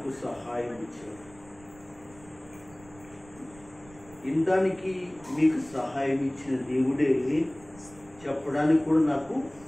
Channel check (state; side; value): noise; right; rumble, 23 dB below the sound